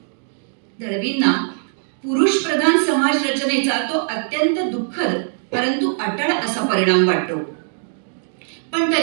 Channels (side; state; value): left; silent; digital silence